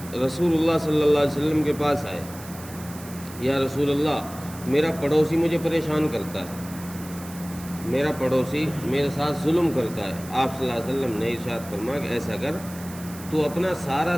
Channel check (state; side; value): noise; right; hiss, 17 dB below the sound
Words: رسول اللہ صلی اللہ علیہ وسلم کے پاس آئے، یا رسول اللہ، میرا پڑوسی مجھے پریشان کرتا ہے، میرا پڑوسی میرے ساتھ ظلم کرتا ہے۔ آپ صلی اللہ علیہ وسلم نے ارشاد فرمایا کہ ایسا کر، تو اپنا سارا